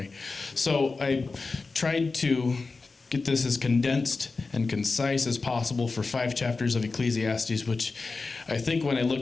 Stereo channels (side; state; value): right; quieter; 4.0 dB